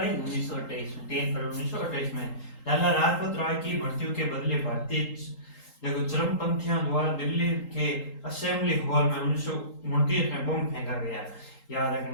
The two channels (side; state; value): right; late; 3.8 ms